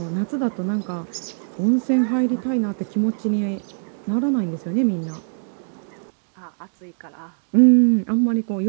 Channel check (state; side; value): silent; left; digital silence